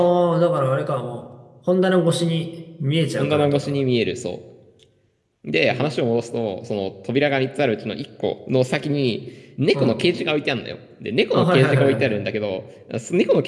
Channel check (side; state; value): both; identical; correlation 1.00